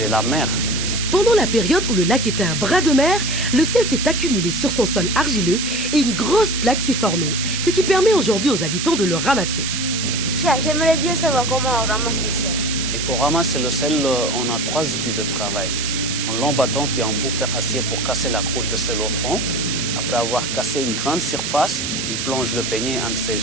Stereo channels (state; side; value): noise; right; hiss, 3 dB below the sound